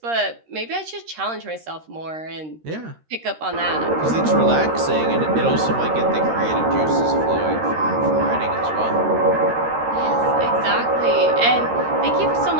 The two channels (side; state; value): left; late; 13 ms